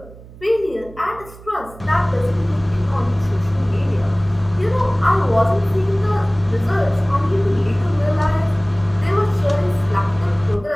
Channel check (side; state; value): right; noise; hum, 19 dB below the sound